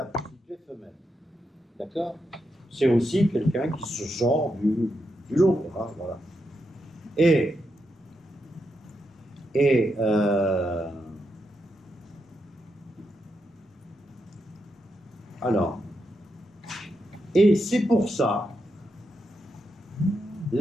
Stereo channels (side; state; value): both; normal; correlation 0.84